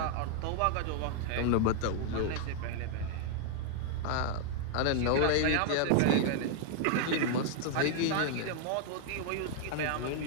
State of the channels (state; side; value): different; both; correlation 0.00